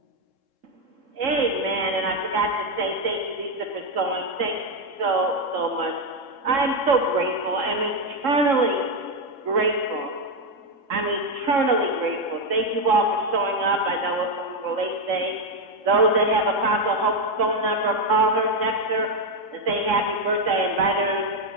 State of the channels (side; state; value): left; late; 3.7 ms